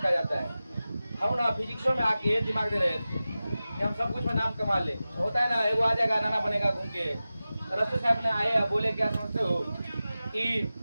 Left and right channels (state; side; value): inverted; both; correlation -0.95